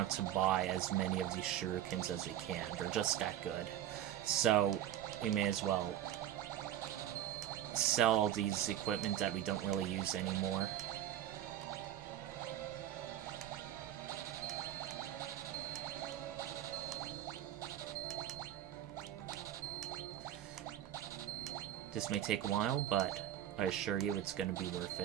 to buy as many of these shurikens as we can. They're just that good. So we may as well sell all these equipment that we don't really use anymore. This may take a while, but I assure you it's going to be worth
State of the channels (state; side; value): quieter; left; 11.6 dB